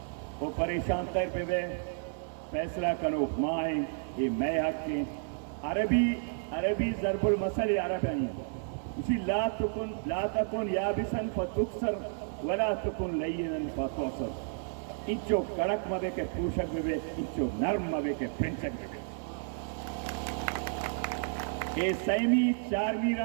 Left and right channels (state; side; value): silent; left; digital silence